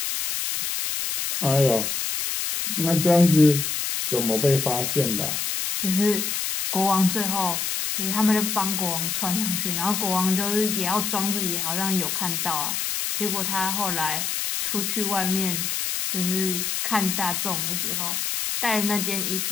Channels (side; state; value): left; noise; hiss, 1 dB below the sound